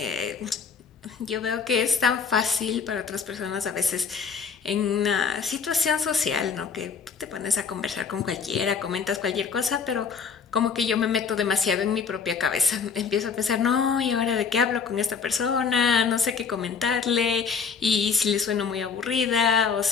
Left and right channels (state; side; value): quieter; right; 6.0 dB